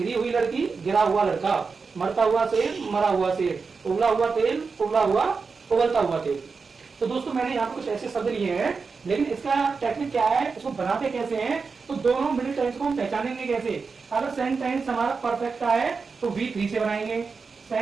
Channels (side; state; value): left; quieter; 4.8 dB